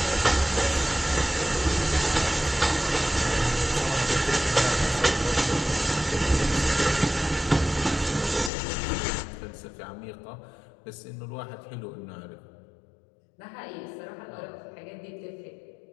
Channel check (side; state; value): right; drops out; at 8.5 s